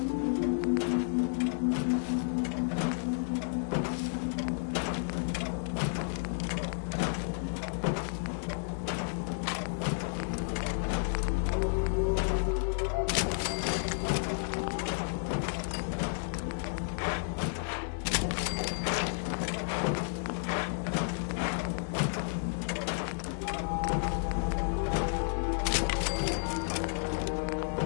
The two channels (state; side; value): silent; right; 57 dB below the other